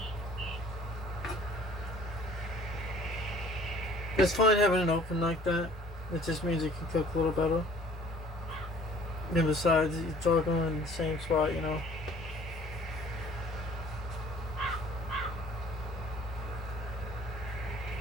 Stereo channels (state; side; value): normal; both; correlation 0.53